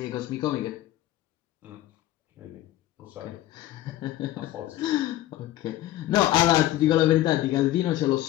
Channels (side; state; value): right; quieter; 14.8 dB